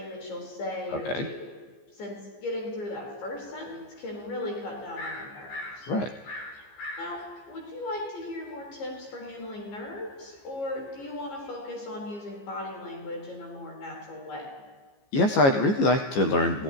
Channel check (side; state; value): right; late; 15 ms